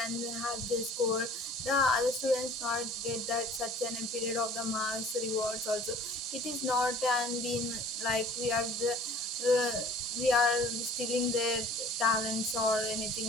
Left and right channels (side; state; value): both; normal; correlation 0.50